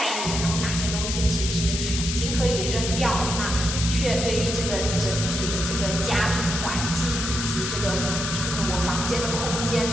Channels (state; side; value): noise; left; hiss, 3 dB below the sound